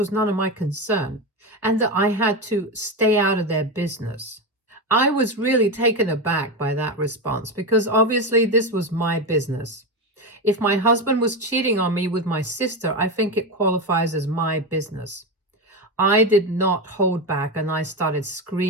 none of my concern and that I had to stay out of their business. I was really taken aback by that response because obviously this was my business. If my husband was cheating on me with my sister, I think it qualifies as my business. I did not hold back and I started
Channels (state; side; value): normal; both; correlation 0.15